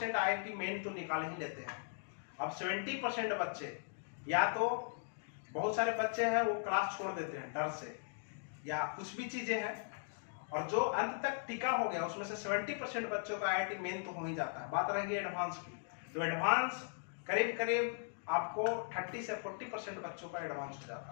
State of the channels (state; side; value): silent; right; digital silence